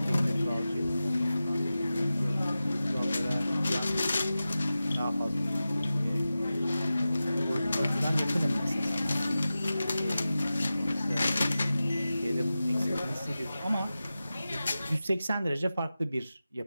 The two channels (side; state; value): both; inverted; correlation -0.94